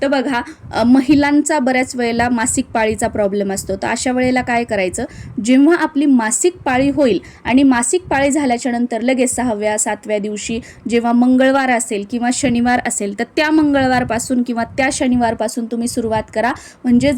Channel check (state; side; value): identical; both; correlation 1.00